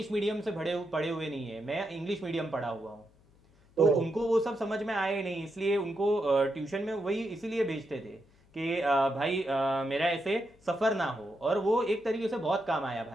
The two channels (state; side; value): noise; left; hum, 30 dB below the sound